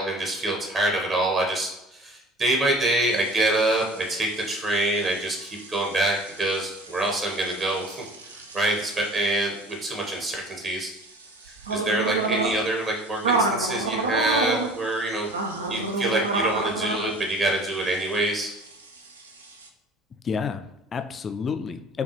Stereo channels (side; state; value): both; normal; correlation 0.45